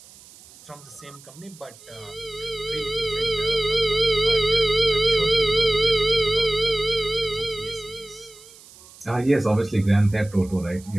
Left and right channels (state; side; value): noise; right; hiss, 22 dB below the sound